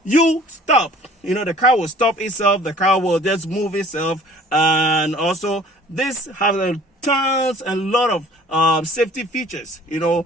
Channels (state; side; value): normal; both; correlation 0.51